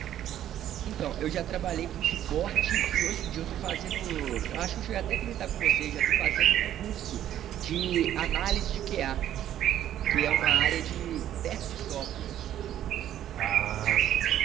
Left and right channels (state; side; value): quieter; left; 11.5 dB